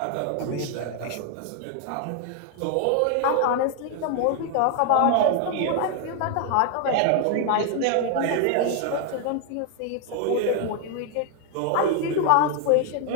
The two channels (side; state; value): both; different; correlation 0.00